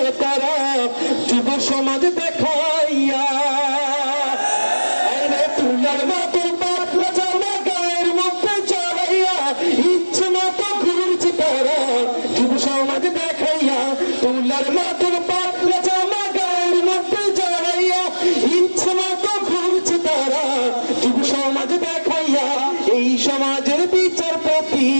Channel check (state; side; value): inverted; both; correlation -1.00